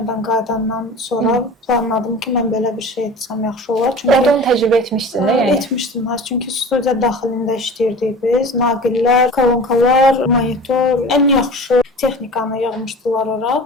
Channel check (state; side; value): normal; both; correlation 0.37